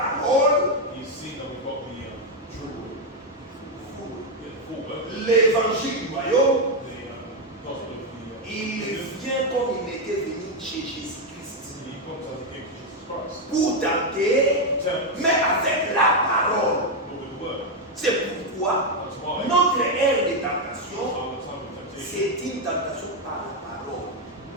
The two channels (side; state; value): both; normal; correlation 0.04